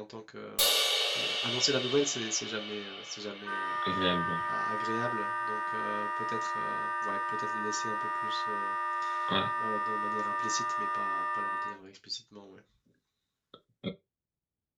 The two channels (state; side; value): identical; both; correlation 1.00